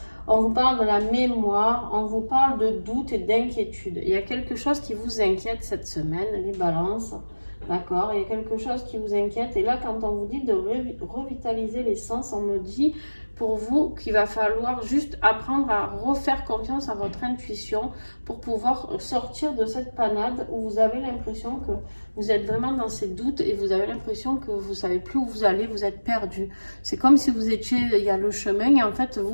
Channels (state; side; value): inverted; both; correlation -1.00